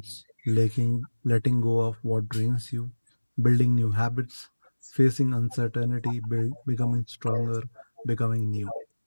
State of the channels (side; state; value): both; inverted; correlation -1.00